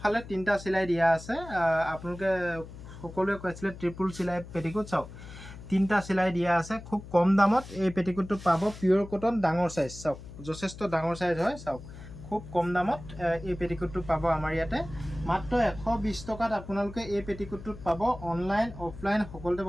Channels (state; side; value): noise; left; hum, 14 dB below the sound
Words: তিনিটা চিলাই দিয়া আছে। আপোনালোকে সকলোৱে কৈছিলে ট্ৰিপুল চিলাই পেটিকোট চাওক তিনিটা চিলাই দিয়া আছে। খুব কম দামত এই পেটিকোটটো পাব। পিয়ৰ কটন ডাঙৰ সাইজ চাওক যথেষ্ট ডাঙৰ সাইজ হয়। চাওক খুব কম দামত এই পেটিকোটটো পাব আমাৰ ইয়াতে মাত্ৰ 120 টকাত আপোনালোকে এই পেটিকোটটোত পাব। অনলাইন অফলাইন সকলোতে